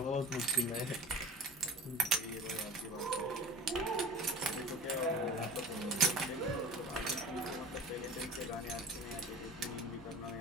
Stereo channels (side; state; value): both; normal; correlation 0.39